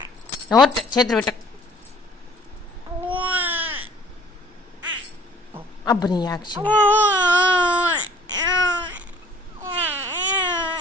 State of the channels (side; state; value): both; normal; correlation 0.54